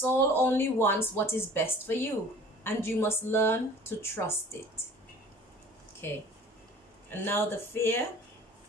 only wants what is best for you, and you must learn to trust it. Okay, and now the fear.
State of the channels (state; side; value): normal; both; correlation 0.47